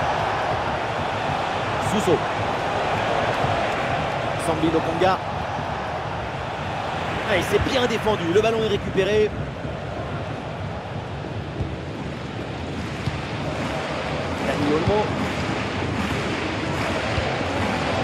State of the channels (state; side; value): identical; both; correlation 1.00